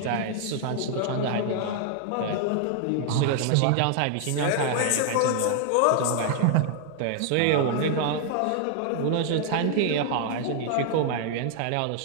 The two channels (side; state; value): both; different; correlation 0.00